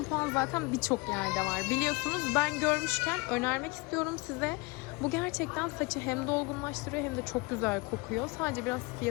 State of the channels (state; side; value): quieter; right; 25.7 dB